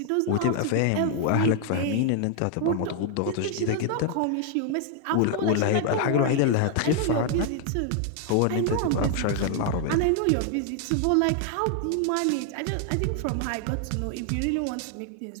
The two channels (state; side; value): different; both; correlation 0.00